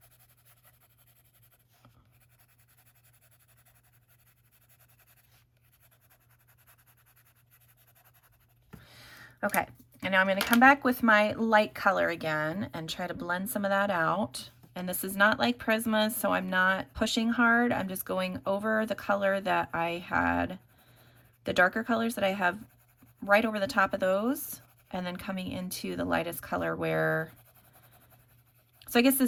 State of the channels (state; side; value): identical; both; correlation 1.00